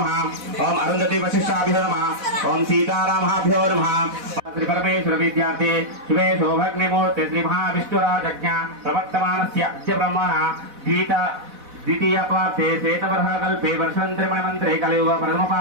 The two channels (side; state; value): left; late; 4.1 ms